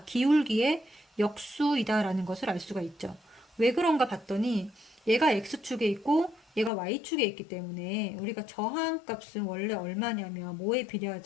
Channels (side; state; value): right; drops out; at 6.7 s